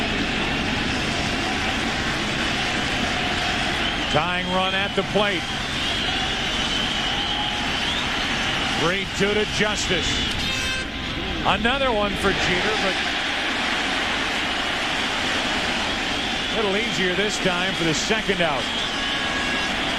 Tying run at the plate. 3-2 to Justice. Another one for Jeter, but a little easier this time for the second out.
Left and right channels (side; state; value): both; identical; correlation 1.00